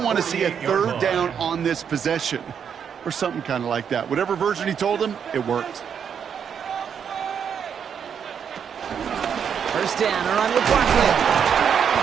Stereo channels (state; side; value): quieter; left; 7.6 dB